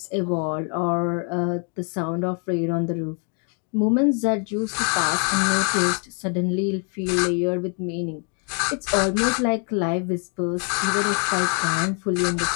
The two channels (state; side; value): quieter; right; 39.2 dB